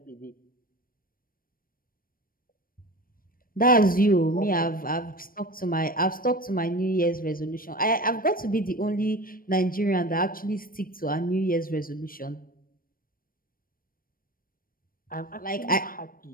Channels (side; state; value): right; late; 0.41 ms